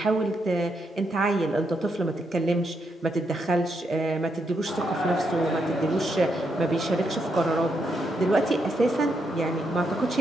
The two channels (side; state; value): both; normal; correlation 0.80